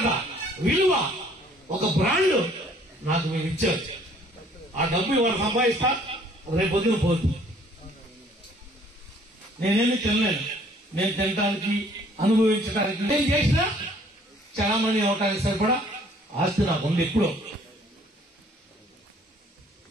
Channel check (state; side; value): normal; both; correlation 0.58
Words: విలువ, ఒక బ్రాండ్ నాకు మీరు ఇచ్చారు. ఆ డబ్బు ఇవాళ సంపాదిస్తా, రేపు పొద్దున పోదు. నేనేమి తినలేను. నేను తినడానికి, అనుభవించడానికి, నేను చేసినా చలామణి అవటానికి సరిపడా ఆస్తి నాకు ఉంది. ఎప్పుడో